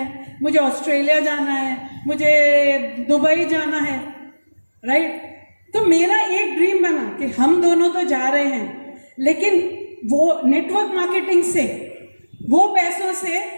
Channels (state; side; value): inverted; both; correlation -1.00